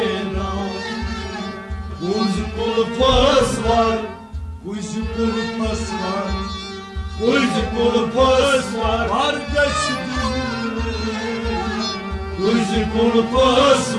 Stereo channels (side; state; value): both; identical; correlation 1.00